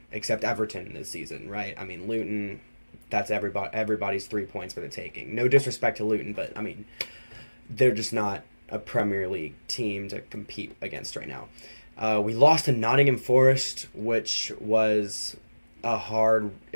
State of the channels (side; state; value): both; inverted; correlation -1.00